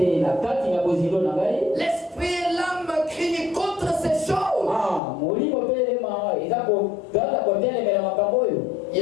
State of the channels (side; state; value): right; drops out; at 5.0 s